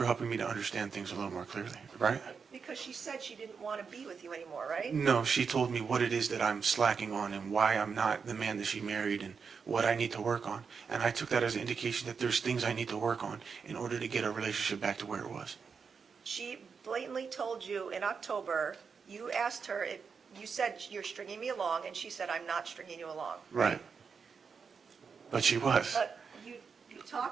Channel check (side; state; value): left; quieter; 5.8 dB